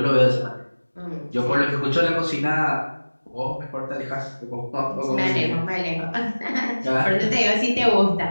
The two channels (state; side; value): inverted; both; correlation -1.00